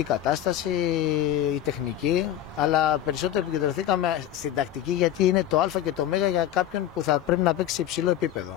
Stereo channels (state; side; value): quieter; right; 11.5 dB